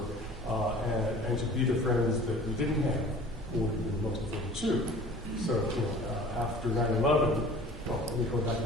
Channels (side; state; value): both; normal; correlation 0.45